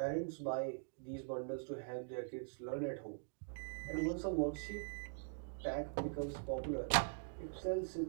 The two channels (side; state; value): left; silent; digital silence